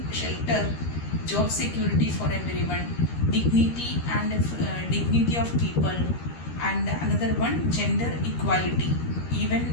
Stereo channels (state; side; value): late; right; 13 ms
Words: shelter, job security for everyone, dignity and dignity of people, and another one gender equality.